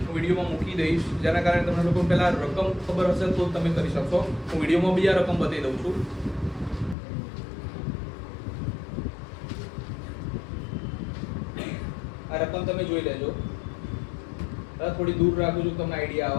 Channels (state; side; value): drops out; right; at 7.0 s